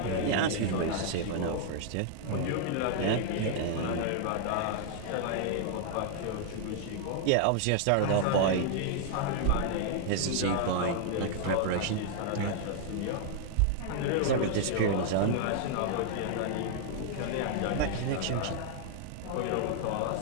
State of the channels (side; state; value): both; different; correlation 0.00